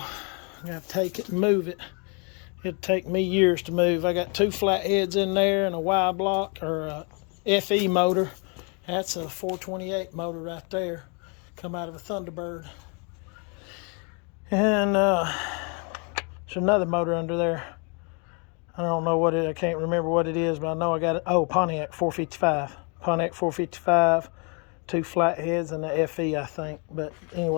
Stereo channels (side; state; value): right; quieter; 35.5 dB